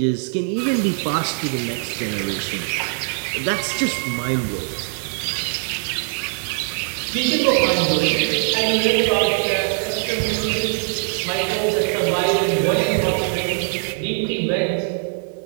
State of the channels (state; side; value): silent; left; 55 dB below the other